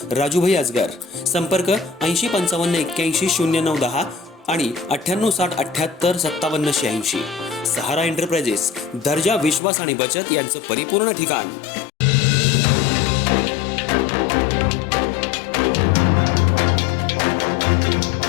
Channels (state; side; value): drops out; right; at 9.6 s